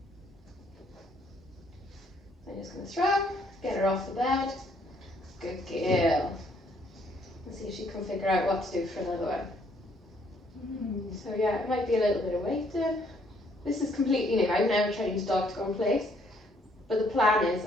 I'm just going to throw, get her off the bed. Good girl. Let's see if she can figure out what to do for another one. So yeah, it might be a little bit of waiting. This is completely new. I've never trained a dog to go in place. But the plan is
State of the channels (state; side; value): normal; both; correlation 0.67